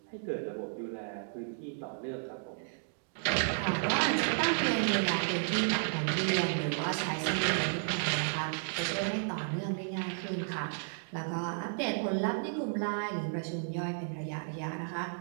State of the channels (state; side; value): silent; left; digital silence